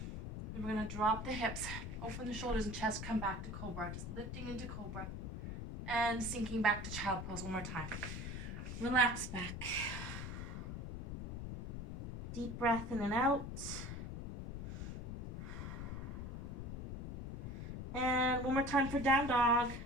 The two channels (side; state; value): left; noise; rumble, 6 dB below the sound